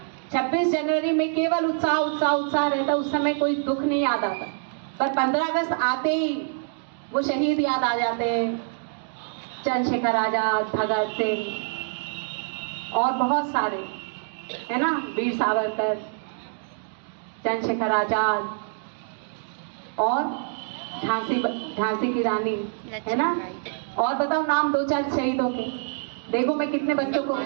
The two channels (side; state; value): left; silent; 61 dB below the other